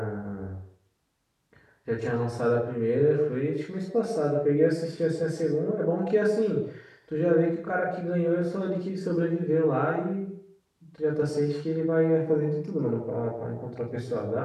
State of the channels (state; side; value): identical; both; correlation 1.00